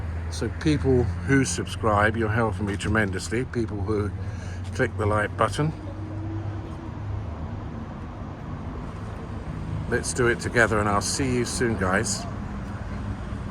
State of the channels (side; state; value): both; identical; correlation 1.00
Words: So people who subscribe, you're helping me tremendously. People who click the like button. Let's do it together, and I'll see you soon, guys.